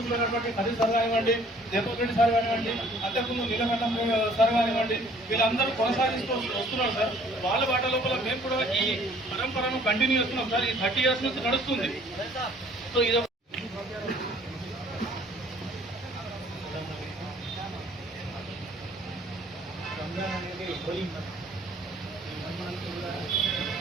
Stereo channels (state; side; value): normal; both; correlation 0.57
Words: అయినటువంటి హరి సార్ కానివ్వండి, జయపూర్ రెడ్డి సార్ కానివ్వండి, అంతకుముందు నీలకంఠం సార్ కానివ్వండి, వీళ్ళందరూ కొనసాగిస్తూ వస్తున్నారు సార్. వాళ్ళ బాట లోపల మేము కూడా ఈ పరంపరను కంటిన్యూ చేస్తున్నాం సార్. ఈ 30 years నుంచి నడుస్తుంది. సో ఇది రంజాన్ అనేది హోలీ మంత్. ఈ మంత్ కూడా